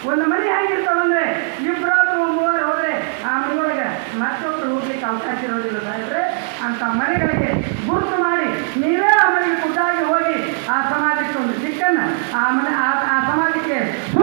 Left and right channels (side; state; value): left; silent; 65 dB below the other